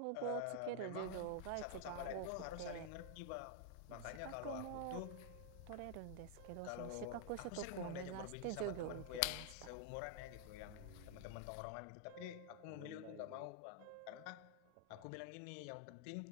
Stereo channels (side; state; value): both; different; correlation 0.00